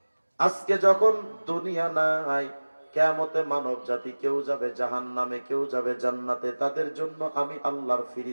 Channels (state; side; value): inverted; both; correlation -1.00